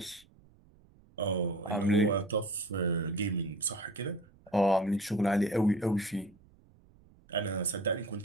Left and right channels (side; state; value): right; noise; rumble, 28 dB below the sound